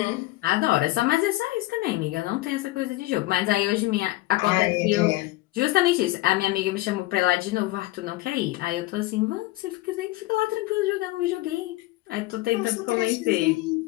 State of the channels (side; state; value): right; quieter; 19.0 dB